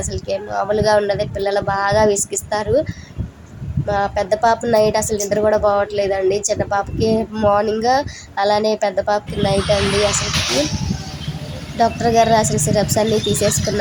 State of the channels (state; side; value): identical; both; correlation 1.00